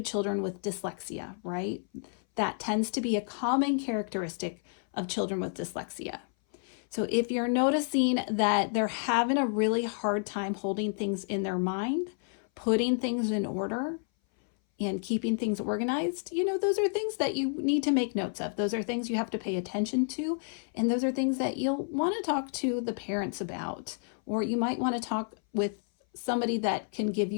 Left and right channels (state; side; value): silent; right; 58 dB below the other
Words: children with dyslexia, right? That tends to be a common characteristic of children with dyslexia. So if you're noticing that they're having a really hard time holding things in their mind, putting things in order, and keeping things organized, those are things that you need to make notes of. Those are things you have to pay attention to. And those are things that you'll want to talk to the parents about, or you might want to talk with somebody that can give